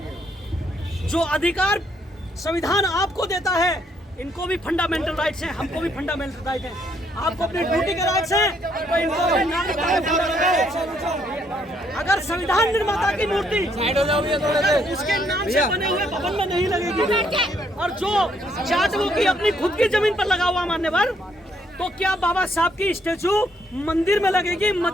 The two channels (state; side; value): normal; both; correlation 0.71